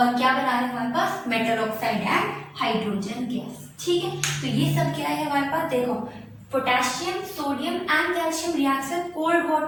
क्या बना रहे हैं हमारे पास, metal oxide and hydrogen gas, ठीक है। तो ये सब क्या है हमारे पास, देखो potassium, sodium and calcium reacts with cold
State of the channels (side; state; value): both; identical; correlation 1.00